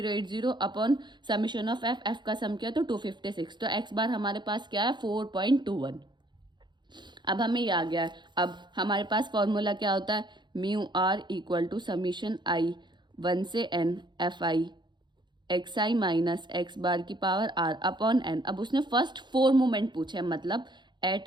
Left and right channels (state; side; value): late; left; 0.22 ms